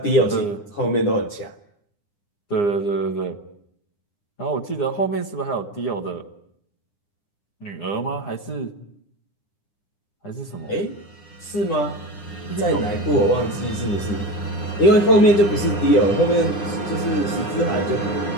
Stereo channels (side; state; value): right; late; 9.8 ms